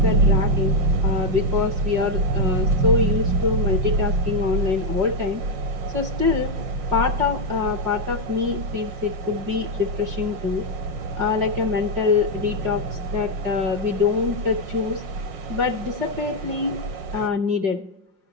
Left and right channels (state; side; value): late; left; 5.5 ms